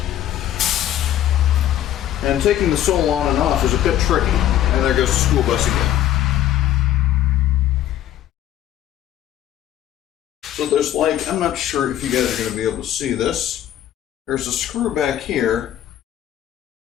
And taking the sole on and off is a bit tricky. And there goes the school bus again. So there's I'm not sure if you guys are going to be able to see this. There's a screw back here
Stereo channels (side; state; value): right; quieter; 12.0 dB